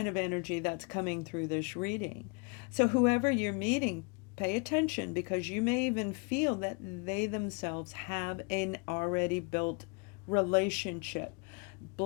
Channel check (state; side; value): quieter; right; 33.3 dB